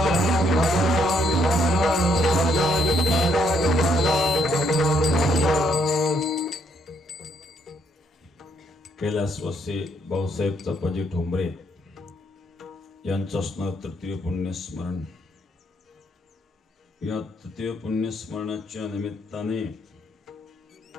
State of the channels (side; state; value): both; normal; correlation 0.72